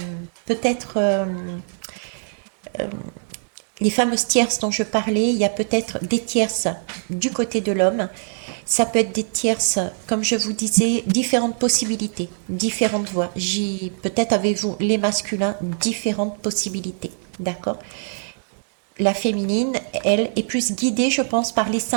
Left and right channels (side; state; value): left; silent; digital silence